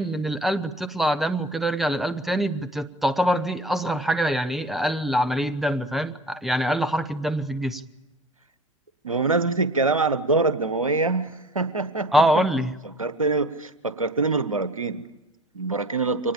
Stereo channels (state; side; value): normal; both; correlation 0.42